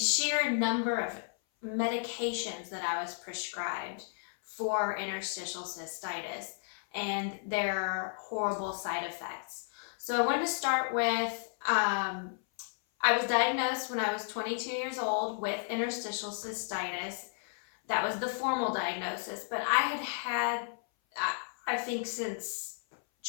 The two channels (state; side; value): silent; right; 56 dB below the other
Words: number of medications that I was prescribed for interstitial cystitis and their horrible side effects. So I wanted to start with I was diagnosed when I was 22 years old with interstitial cystitis. That was the formal diagnosis, but I think since